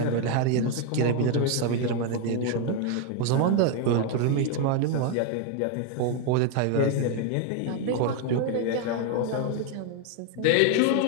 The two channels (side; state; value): both; different; correlation 0.01